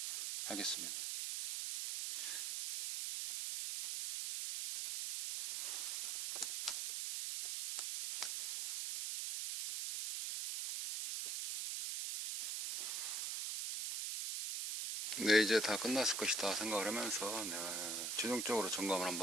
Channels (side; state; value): right; noise; hiss, 1 dB below the sound